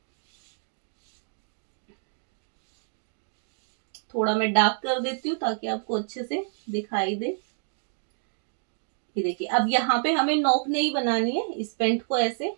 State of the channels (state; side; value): silent; left; digital silence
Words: थोड़ा मैं डार्क कर देती हूँ ताकि आपको अच्छे से दिखाई दे। ये देखिए अब यहाँ पे हमें नोक नहीं बनानी है, इस पेंट को ऐसे